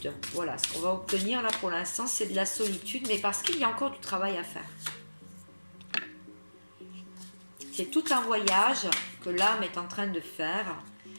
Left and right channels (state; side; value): inverted; both; correlation -1.00